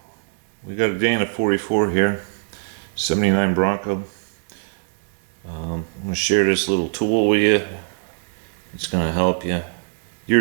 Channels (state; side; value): silent; left; digital silence